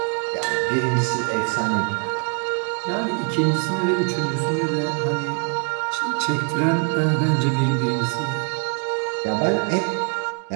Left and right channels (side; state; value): left; quieter; 38.7 dB